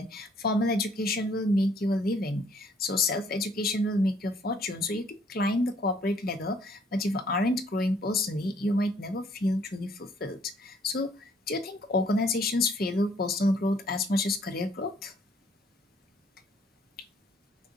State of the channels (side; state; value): both; normal; correlation 0.63